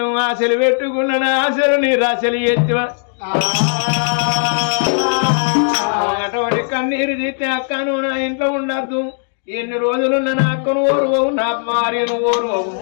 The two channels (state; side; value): silent; right; digital silence